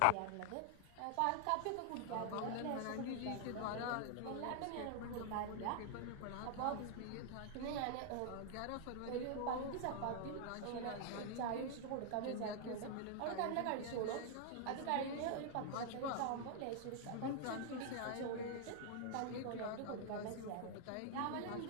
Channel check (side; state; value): both; different; correlation 0.00